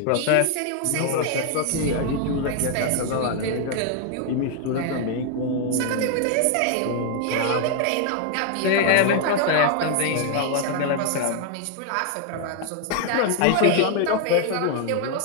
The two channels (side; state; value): both; different; correlation 0.00